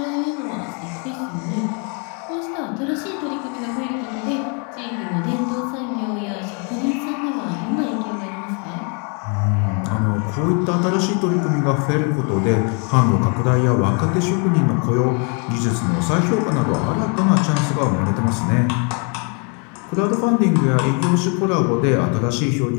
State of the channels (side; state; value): right; quieter; 36.6 dB